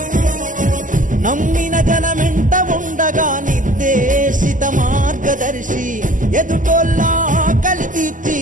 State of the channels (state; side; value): late; left; 0.38 ms